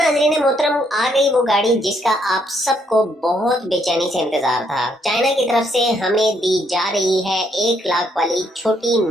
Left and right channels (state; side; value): normal; both; correlation 0.72